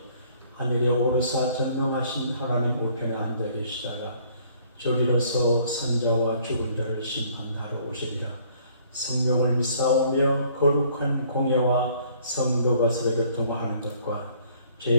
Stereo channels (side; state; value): both; inverted; correlation -0.60